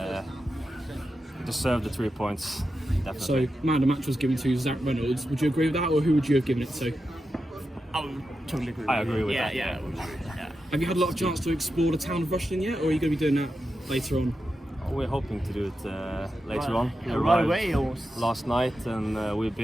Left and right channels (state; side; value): normal; both; correlation 0.89